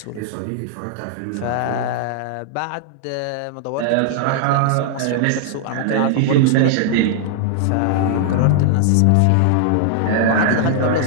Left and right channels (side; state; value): both; different; correlation -0.01